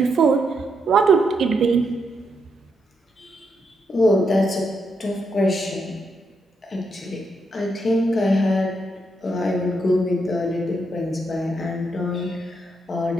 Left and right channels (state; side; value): normal; both; correlation 0.80